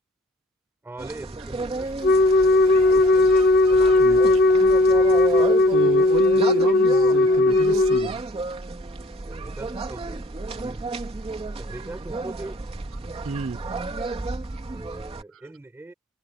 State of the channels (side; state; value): both; normal; correlation 0.53